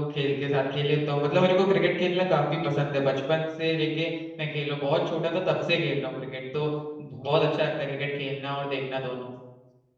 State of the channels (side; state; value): both; identical; correlation 1.00